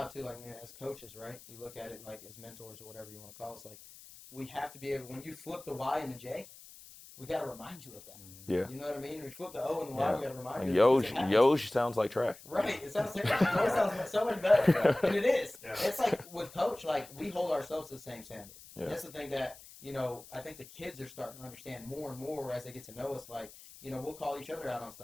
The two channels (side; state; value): left; noise; hiss, 19 dB below the sound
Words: too. Like, as coaches, right? You look at it like as mentors or whatever you want to call us. Like, we have to be able, when you flip the Y and the J, we got to remind you of that. Yeah. You know what I mean? When you flip the O and the Y, we got to remind you of that because it happens. Yosh sounds like trash. Right. It sounds terrible. Joy sounds so much better. Yeah. And it is. Yeah. It's like with Coach, like, we hold ourselves to the same standard. And that's the thing that, I think the kids are starting to understand more and more as they get to know us. Like, we'll call each other out on